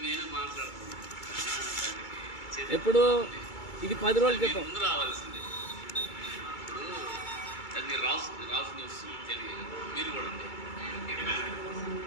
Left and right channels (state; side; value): late; right; 2.3 ms